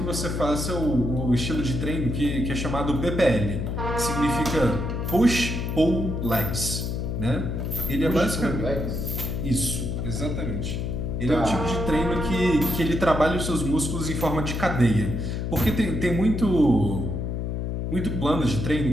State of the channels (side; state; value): left; noise; hum, 2 dB below the sound